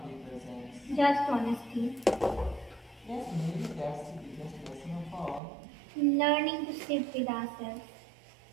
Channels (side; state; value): left; drops out; at 5.4 s